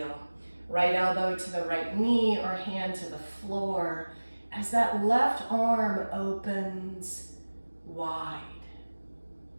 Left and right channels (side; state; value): both; inverted; correlation -1.00